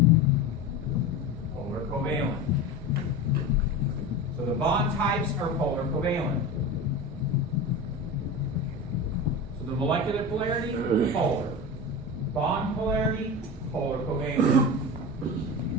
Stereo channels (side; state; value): both; normal; correlation 0.27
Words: polar covalent. So the bond types are polar covalent. So the molecular polarity, polar. Bond polarity, polar covalent.